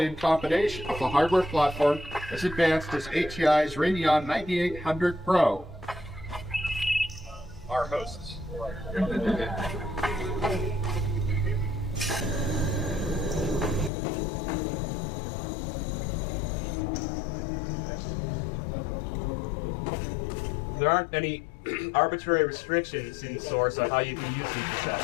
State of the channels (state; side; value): drops out; right; at 13.9 s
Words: in combination with a hardware platform as advanced as ATI's Radeon 9800 Pro. Our hosts. There aren't any arbitrary restrictions in Source on how you can use these